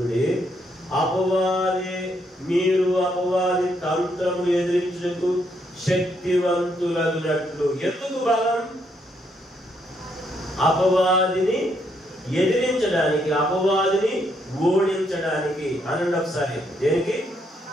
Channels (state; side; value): normal; both; correlation 0.75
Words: మీరు అపవాది తంత్రము ఎదిరించుటకు శక్తివంతులగునట్లు. ఎందుకు బలం? అపవాదిని ఎదిరించడానికి, అపవాదిని ఓడించడానికి. అనండి ఒకసారి. దేనికి?